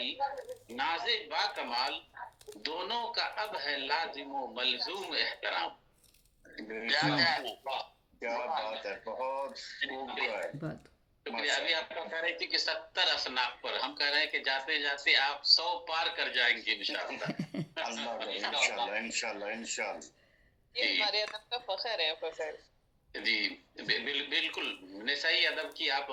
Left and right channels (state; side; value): identical; both; correlation 1.00